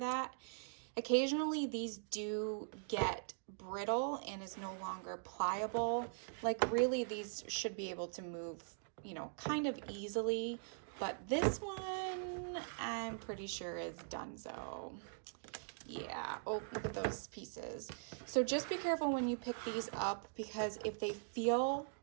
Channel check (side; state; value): left; silent; digital silence